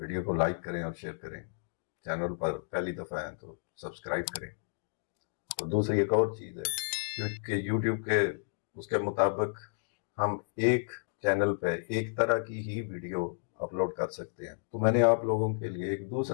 کو لائک کریں اور شیئر کریں. چینل پر پہلی دفعہ ہے تو سبسکرائب کریں. اور دوسری ایک اور چیز ہے کہ یوٹیوب کے اس کے مطابق ہم ایک چینل پہ ایک طرح کی ہی ویڈیو اپلوڈ کر سکتے ہیں. تو میں نے آپ لوگوں کے لیے ایک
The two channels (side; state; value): right; silent; digital silence